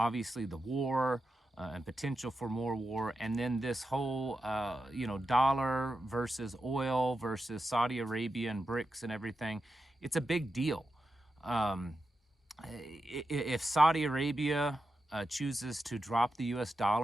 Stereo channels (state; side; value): normal; both; correlation 0.89